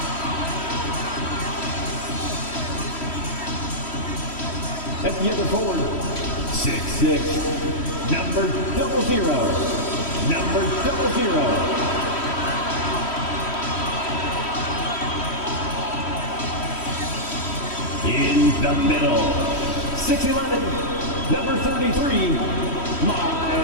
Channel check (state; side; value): late; right; 3.1 ms